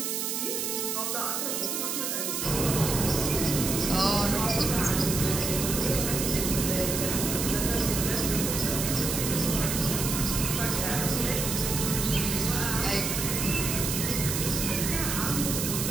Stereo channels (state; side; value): noise; right; hiss, 1 dB below the sound